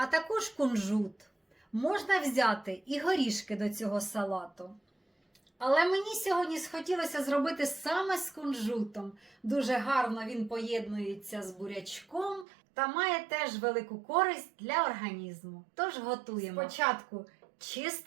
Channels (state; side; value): drops out; left; at 12.5 s